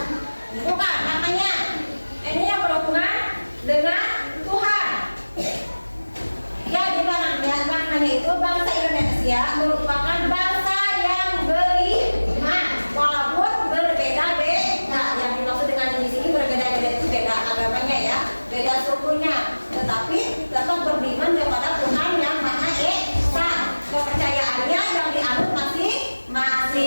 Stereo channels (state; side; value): inverted; both; correlation -1.00